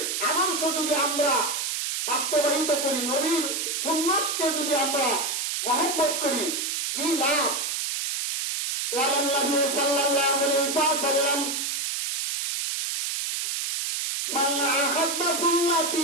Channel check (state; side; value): noise; right; hiss, 1 dB below the sound